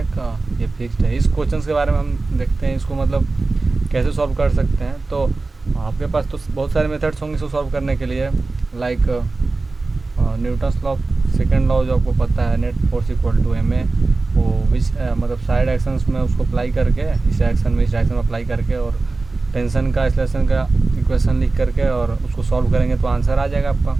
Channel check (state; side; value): quieter; left; 3.6 dB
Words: ये फिक्स्ड है। इस क्वेश्चन के बारे में हम देखते हैं इसको मतलब कैसे सॉल्व कर सकते हैं। तो आपके पास तो बहुत सारे मेथड्स होंगे इसको सॉल्व करने के लिए, like Newton's law, second law जो आपको पता है, net force equal to m a, वो विच मतलब साइड एक्शंस में उसको अप्लाई करके, इस डायरेक्शन में इस डायरेक्शन में अप्लाई करके, और टेंशन का एक्सेलरेशन का इक्वेशन लिख करके और उसको सॉल्व करेंगे तो आंसर आ जाएगा आपका।